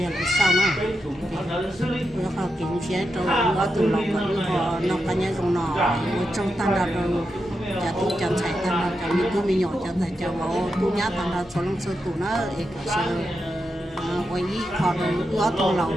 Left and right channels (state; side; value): normal; both; correlation 0.87